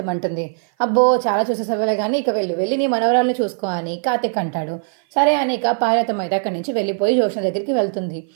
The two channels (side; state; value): left; silent; 56 dB below the other